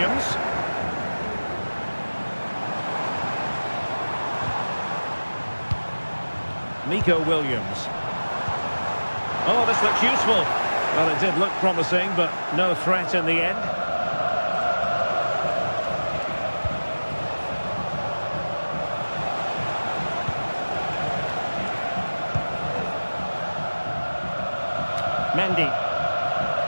Nico Williams. Oh, this looks useful. Well, it did look promising, but no threat in the end. Mendy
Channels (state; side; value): inverted; both; correlation -1.00